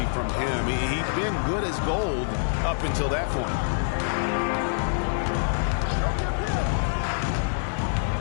from him. He'd been good as gold up until that point.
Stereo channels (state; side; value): silent; right; digital silence